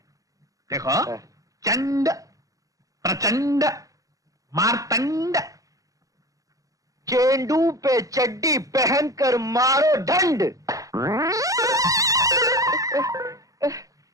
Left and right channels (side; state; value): left; late; 0.17 ms